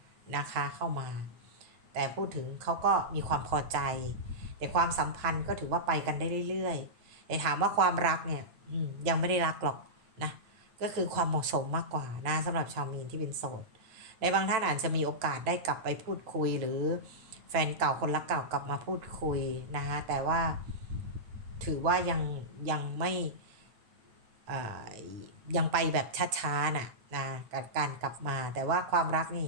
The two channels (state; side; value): late; left; 8.9 ms